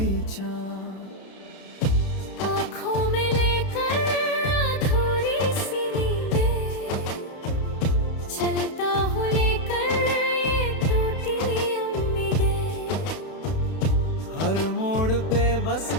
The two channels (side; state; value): right; late; 31 ms